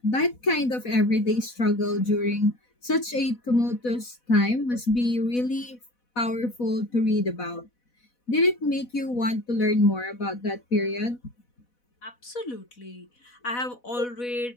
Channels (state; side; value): late; right; 4.1 ms